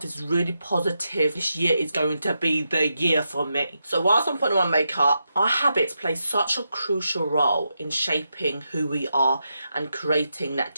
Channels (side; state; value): both; inverted; correlation -0.86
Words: really positive, this year is going to be the year for me. So whilst I'm putting on my makeup, our habits play such a crucial role in shaping who we are and creating that